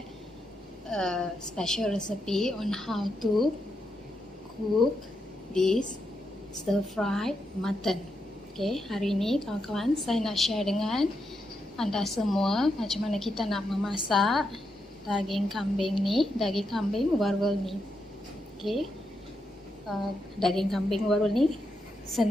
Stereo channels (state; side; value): normal; both; correlation 0.83